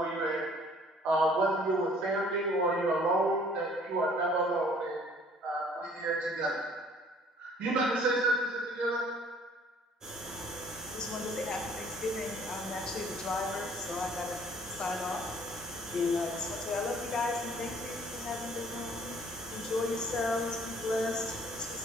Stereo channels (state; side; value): normal; both; correlation 0.56